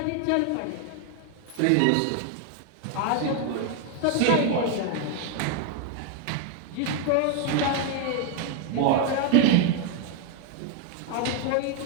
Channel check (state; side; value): different; both; correlation 0.01